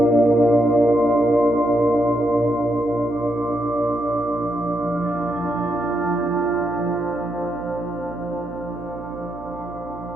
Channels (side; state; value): right; noise; hum, 16 dB below the sound